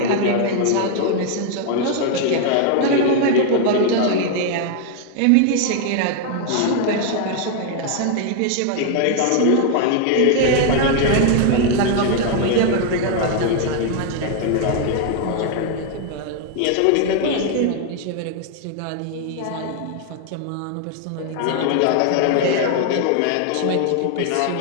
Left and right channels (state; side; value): different; both; correlation 0.00